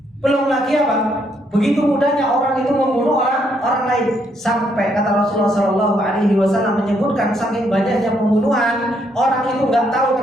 Belum lagi apa? Begitu mudahnya orang itu membunuh orang lain. Sampai kata Rasulullah Shallallahu Alaihi Wasallam menyebutkan saking banyaknya pembunuhan, orang itu nggak tahu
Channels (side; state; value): both; normal; correlation 0.73